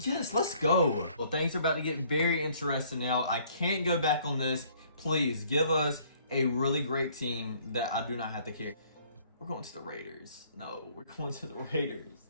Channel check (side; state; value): both; inverted; correlation -0.60